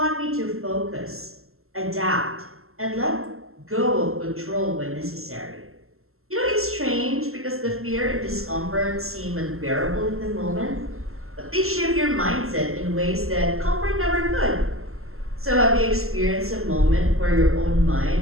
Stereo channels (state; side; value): late; left; 0.62 ms